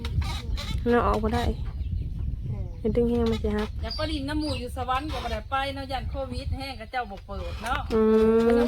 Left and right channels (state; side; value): identical; both; correlation 1.00